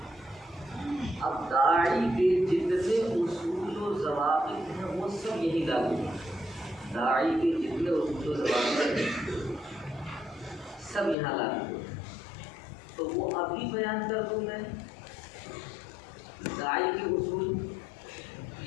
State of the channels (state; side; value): drops out; right; at 11.2 s